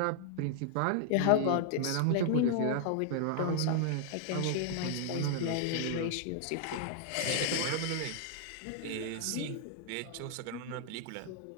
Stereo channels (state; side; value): different; both; correlation 0.00